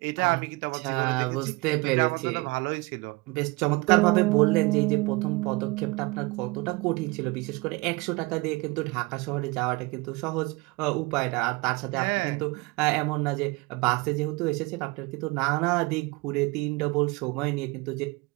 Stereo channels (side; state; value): left; quieter; 24.5 dB